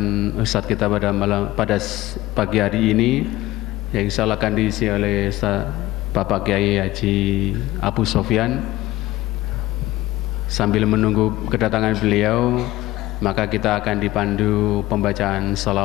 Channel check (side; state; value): right; quieter; 16.7 dB